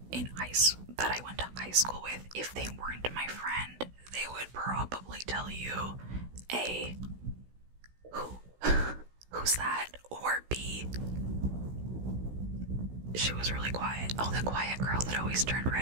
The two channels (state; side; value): late; left; 16 ms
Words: that I went to high school with if they weren't my friend, they would probably tell you A, who's that? Or B, she was really quiet. Oh, the quiet girl that always turned